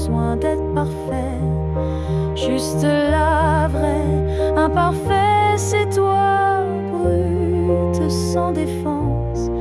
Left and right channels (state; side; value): identical; both; correlation 1.00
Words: d'être parfait, juste la vraie. Imparfait, c'est toi, brute, sans défense,